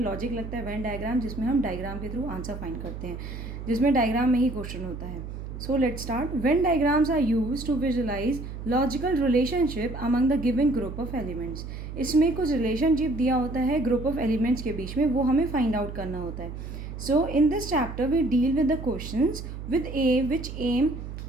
लॉजिक लगता है, वेन डायग्राम जिसमें हम डायग्राम के थ्रू आंसर फाइंड करते हैं, जिसमें डायग्राम में ही क्वेश्चन होता है। So let's start. Venn diagrams are used to visualize logical relationship among the given group of elements. इसमें कुछ रिलेशनशिप दिया होता है ग्रुप ऑफ एलिमेंट्स के बीच में, वो हमें फाइंड आउट करना होता है। So in this chapter we deal with the questions with a which aim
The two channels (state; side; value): noise; right; hum, 9 dB below the sound